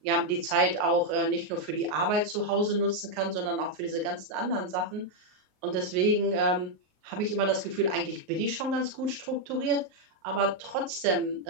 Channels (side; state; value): left; late; 38 ms